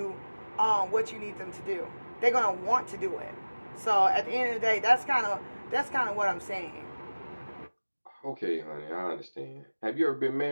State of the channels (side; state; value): both; inverted; correlation -1.00